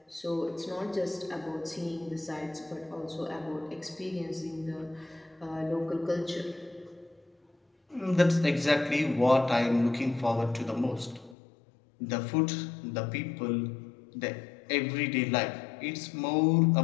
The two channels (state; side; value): drops out; right; at 11.4 s